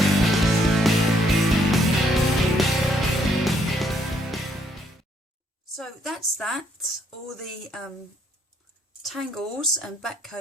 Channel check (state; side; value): normal; both; correlation 0.70